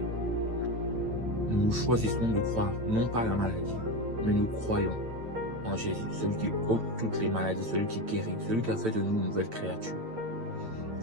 Nous choisissons de croire non pas à la maladie, mais nous croyons en Jésus, celui qui ôte toutes les maladies, celui qui guérit, celui qui a fait de nous une nouvelle créature.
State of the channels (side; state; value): left; late; 8.9 ms